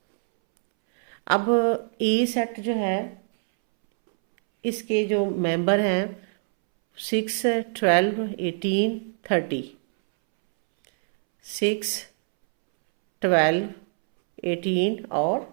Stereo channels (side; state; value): left; silent; 62 dB below the other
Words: अब ए सेट जो है इसके जो मेंबर हैं 6 12 18 30, 6 12 18